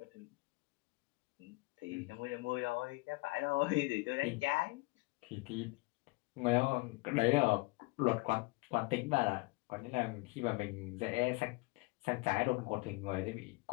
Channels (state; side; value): quieter; right; 24.6 dB